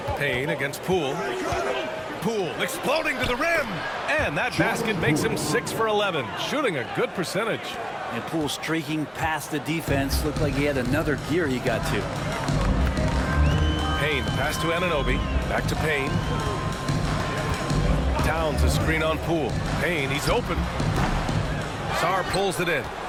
Payne against Poole. Poole exploding to the rim. And that basket makes him 6 for 11, shooting a good percentage. And Poole streaking past the defense. Looked like he had another gear he got to. Payne, pass to Anunoby. Back to Payne. Towns a screen on Poole. Payne, he's open. Sarr pulls it in.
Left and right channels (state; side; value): identical; both; correlation 1.00